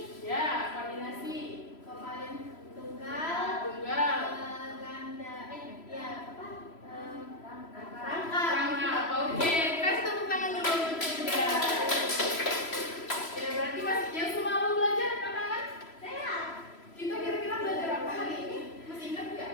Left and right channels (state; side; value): late; right; 3.0 ms